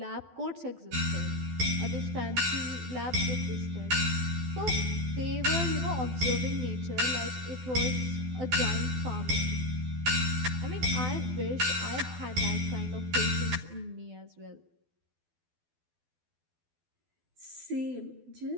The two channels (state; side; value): late; left; 12 ms